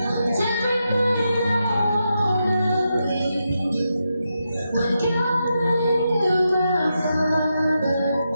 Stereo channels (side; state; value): both; inverted; correlation -0.86